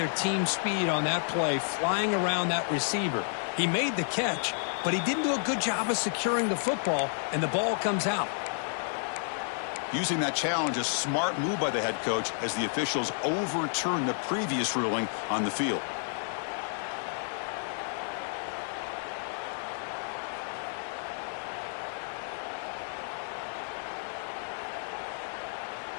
team speed on that play, flying around that receiver. He made the catch, but he didn't do a good job of securing the football, and the ball comes out. Using that challenge, a smart move by the head coach as the officials overturn the previous ruling on the field.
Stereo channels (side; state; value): right; silent; digital silence